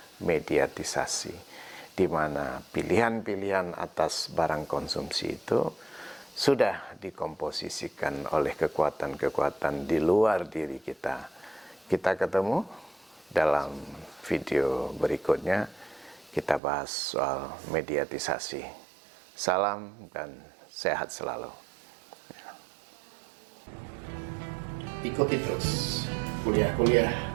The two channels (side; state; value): left; drops out; at 16.6 s